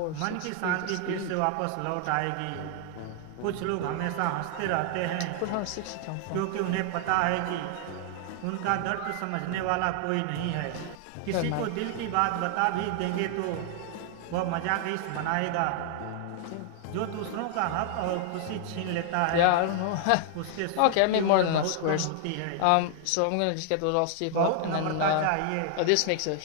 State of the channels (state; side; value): different; both; correlation 0.00